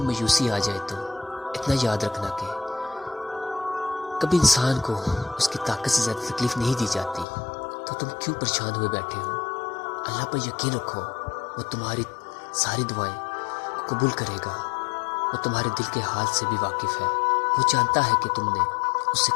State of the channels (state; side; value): drops out; right; at 7.2 s